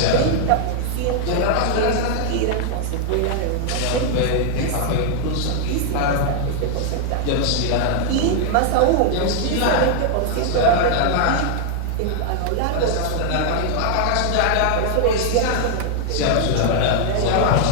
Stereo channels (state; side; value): different; both; correlation 0.00